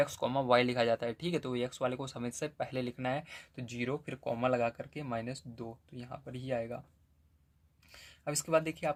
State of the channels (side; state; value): both; identical; correlation 1.00